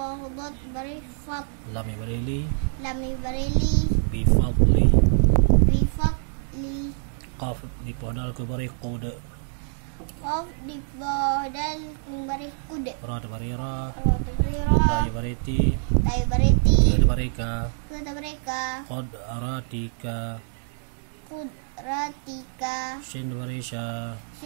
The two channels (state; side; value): silent; left; 61 dB below the other